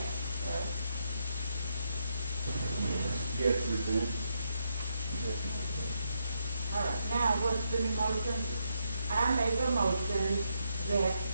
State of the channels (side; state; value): both; inverted; correlation -0.78